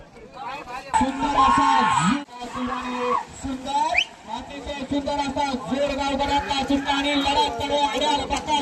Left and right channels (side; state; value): both; identical; correlation 1.00